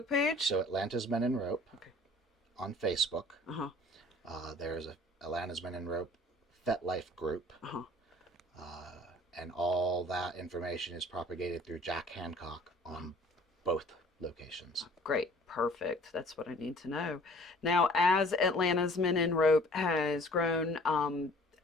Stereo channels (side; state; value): both; normal; correlation 0.51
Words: page? So Atlanta's Men in Rope. Okay. On Facebook. There's a Atlanta's Men in Rope FetLife group. And all that information is propagated through Jack Handcock on both locations. Great. Perfect. That's what I need to know. Now, as Atlanta's Men in Rope has grown,